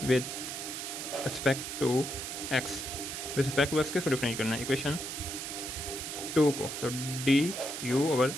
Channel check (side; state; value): right; noise; hiss, 6 dB below the sound